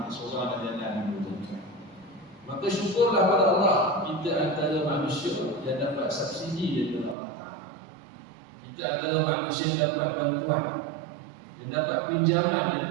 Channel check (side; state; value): left; drops out; at 7.2 s